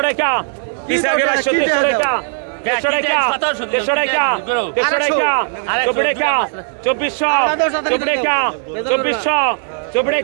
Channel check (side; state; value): left; silent; 67 dB below the other